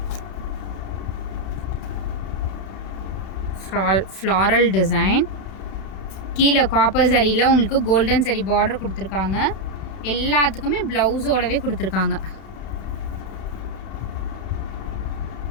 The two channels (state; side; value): late; right; 31 ms